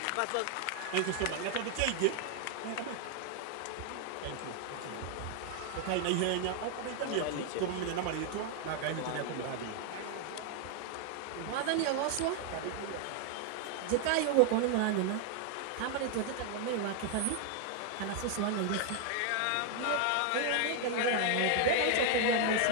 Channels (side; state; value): both; different; correlation 0.00